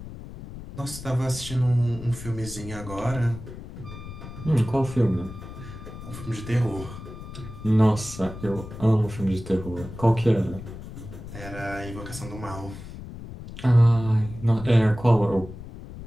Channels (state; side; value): noise; left; rumble, 12 dB below the sound